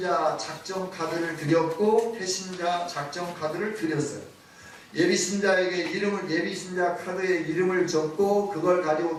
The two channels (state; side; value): identical; both; correlation 1.00